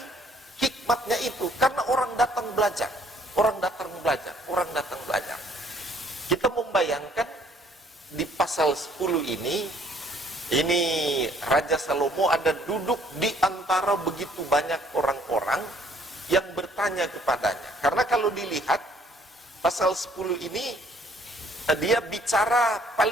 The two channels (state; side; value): normal; both; correlation 0.62